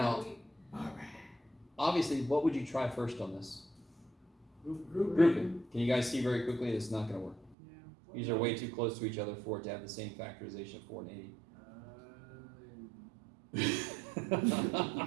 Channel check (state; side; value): drops out; left; at 7.6 s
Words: obviously, what would you try first on this? Grouping. Can you guys see very quickly it's not going to work? Yeah. These are way too close to each other for it to have the same factorization of 4 and 80.